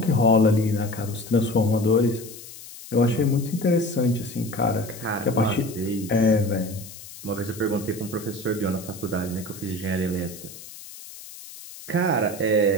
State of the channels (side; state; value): left; noise; hiss, 15 dB below the sound